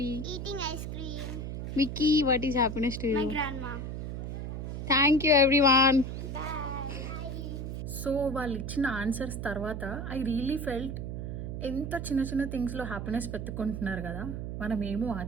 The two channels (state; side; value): noise; right; hum, 5 dB below the sound